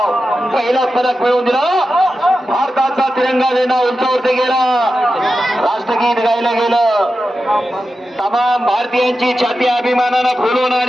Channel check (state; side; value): normal; both; correlation 0.91